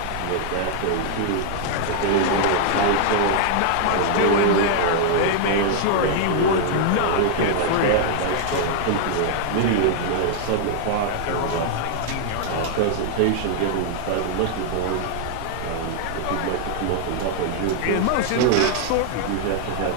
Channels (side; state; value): both; different; correlation -0.01